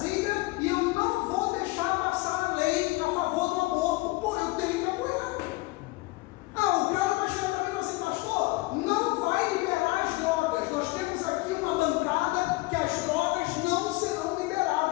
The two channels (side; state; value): right; quieter; 22.5 dB